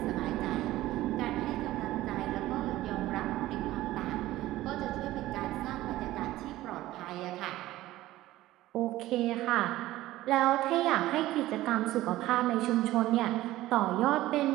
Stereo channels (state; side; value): quieter; left; 16.0 dB